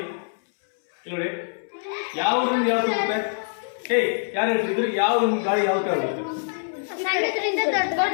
ನೋಡಿ ಯಾವ ಊರಿಂದ ಯಾವ ಹೋಗುತ್ತೆ? ಯಾರು ಹೇಳ್ತಿದ್ರು ಯಾವ ಗಾಳಿ ಯಾವ ತರ ಹೋಗುತ್ತೆ?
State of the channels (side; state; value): right; silent; 62 dB below the other